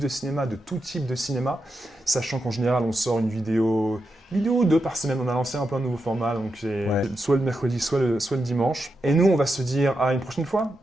cinéma, de tout type de cinéma. Sachant qu'en général, on sort une vidéo ou deux par semaine. On a lancé un peu un nouveau format, donc c'est soit le mercredi, soit le dimanche. Et nous, on va se dire à une prochaine fois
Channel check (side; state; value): both; normal; correlation 0.87